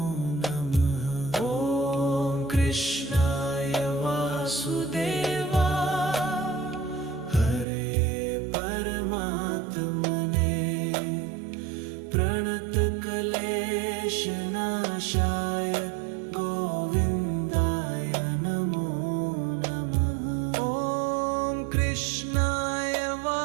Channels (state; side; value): drops out; left; at 7.7 s